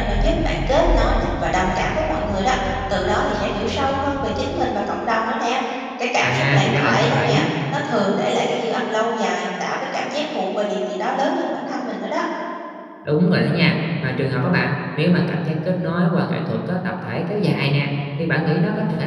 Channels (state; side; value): identical; both; correlation 1.00